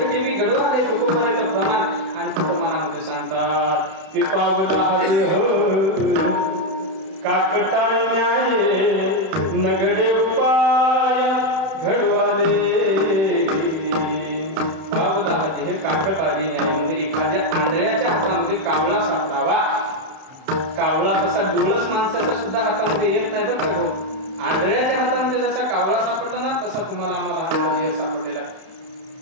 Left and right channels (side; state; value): left; late; 31 ms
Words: गडवाले तुकोबाराचं प्रमाण आणखी प्रमाणामध्ये सांगतात की पावला काकटाय न्याये नगडे उपाय घडवाले. पावला हे काकट आली न्याय म्हणजे एखाद्या आंधळ्याच्या हातामध्ये कावळा सापडावा. कावळा तसा डोळस माणसाच्या सुद्धा हातामध्ये येत नाही बरं का. आंधळ्याच्या हातामध्ये जसा कावळा सापडला ना तसा तुम्हाला आम्हाला हातामध्ये सापडलेला.